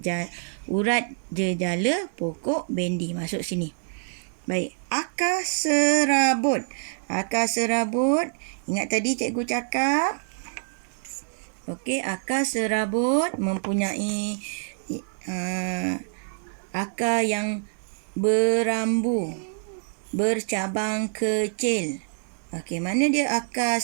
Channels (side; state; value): left; silent; digital silence